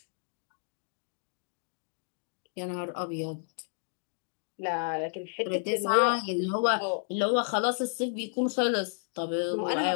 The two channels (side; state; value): right; silent; digital silence